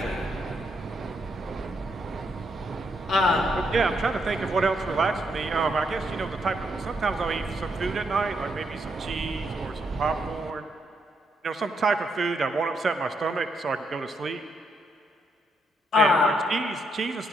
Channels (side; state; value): both; normal; correlation 0.77